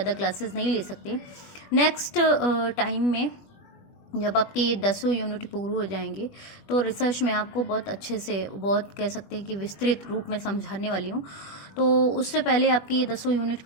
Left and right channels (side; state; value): right; late; 21 ms